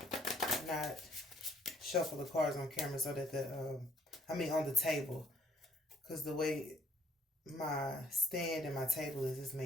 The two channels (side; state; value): both; normal; correlation 0.62